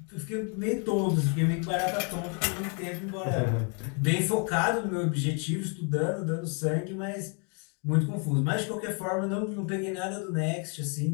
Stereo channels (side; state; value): right; quieter; 37.8 dB